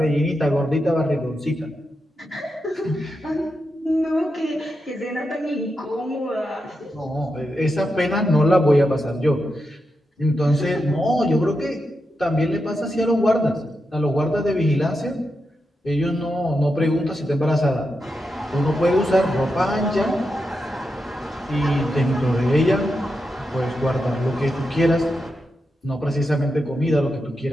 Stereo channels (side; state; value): both; normal; correlation 0.87